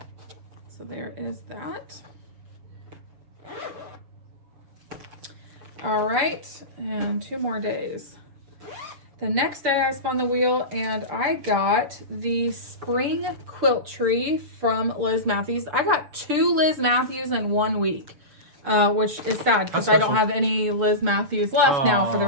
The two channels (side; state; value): left; late; 6.7 ms